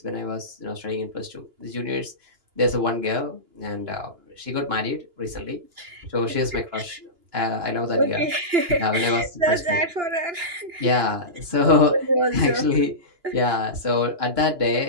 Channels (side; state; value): left; late; 2.9 ms